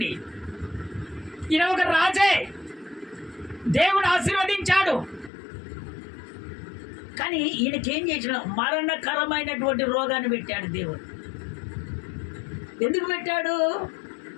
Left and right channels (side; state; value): right; drops out; at 5.3 s